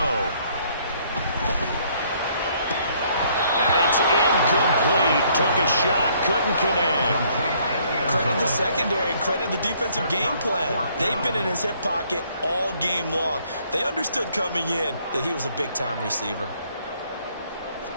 And it's incomplete. Took a shot, couldn't connect. Credit the secondary and credit the defensive game plan. They've been in his hip pocket all game long. They understood coming in that he was a big-time receiver.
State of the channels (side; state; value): both; inverted; correlation -0.64